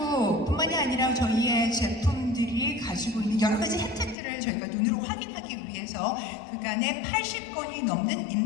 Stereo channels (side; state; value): right; drops out; at 4.2 s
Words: 아니라 저희의 제품들이 가지고 있는 여러 가지 혜택들을 저희가 눈으로 확인하기 위해서 그간에 80건이 넘는